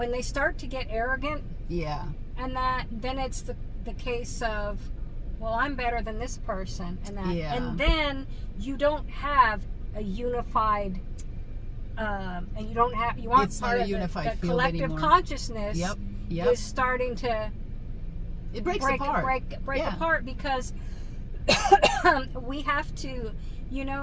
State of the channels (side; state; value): both; identical; correlation 1.00